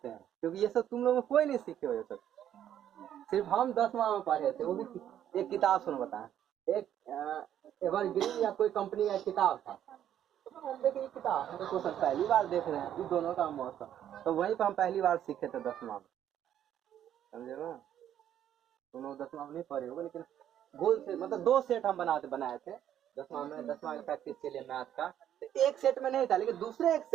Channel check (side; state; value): left; quieter; 10.6 dB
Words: हैं? क्योंकि ये सब तुम लोग कोई नहीं सीखे हो ये सब, सिर्फ हम 10वां में पढ़े थे। वो भी एक किताब सुनो बताएं, एक एवरग्रीन या कोई कंपनी का किताब था। हम देखे ये किताब हम तो क्वेश्चन पहली बार देख रहे हैं, ये दोनों का मौसम तो वहीं पर हम पहली बार सीखे थे 10वां में, समझे ना? तुम लोग 10वां में नहीं पढ़े होगे, लेकिन गोल से मतलब 2 सेट हम बनाए थे 10वां में। 10वां की प्रैक्टिस के लिए मैथ का तो एक सेट में नहीं था, लेकिन दूसरे एक